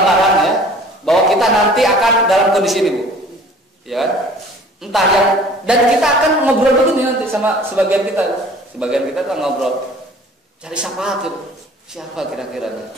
ya, bahwa kita nanti akan dalam kondisi ini, Bu. Ya. Entah yang, dan kita akan ngobrol begini nanti sama sebagian kita tuh ngobrol, cari syafaat gitu. Siapa kira-kira?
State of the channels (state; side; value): normal; both; correlation 0.49